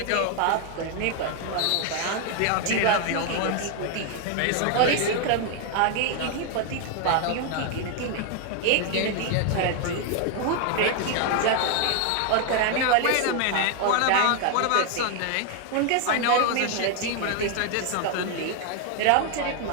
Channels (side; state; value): both; different; correlation 0.01